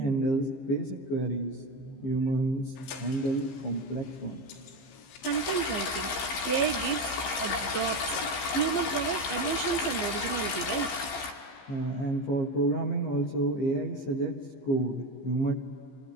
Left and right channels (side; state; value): right; late; 15 ms